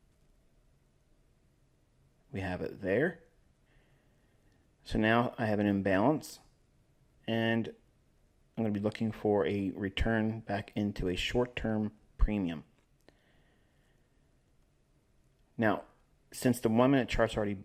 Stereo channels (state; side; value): identical; both; correlation 1.00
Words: We have it there. So now I have an imbalance, and I'm going to be looking for a return back into a short-term premium. Now, since the 1 minute chart's already